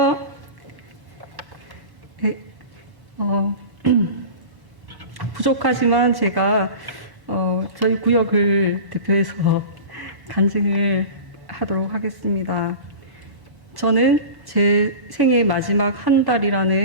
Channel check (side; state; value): left; late; 1.1 ms